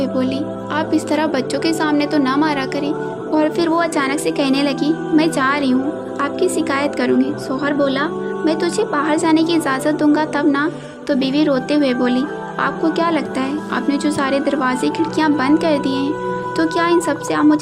بولی، آپ اس طرح بچوں کے سامنے تو نہ مارا کریں۔ اور پھر وہ اچانک سے کہنے لگی، میں جا رہی ہوں، آپ کی شکایت کروں گی۔ شوہر بولا، میں تجھے باہر جانے کی اجازت دوں گا تب نا۔ تو بیوی روتے ہوئے بولی، آپ کو کیا لگتا ہے آپ نے جو سارے دروازے کھڑکیاں بند کر دیے ہیں تو کیا ان سب سے آپ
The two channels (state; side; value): identical; both; correlation 1.00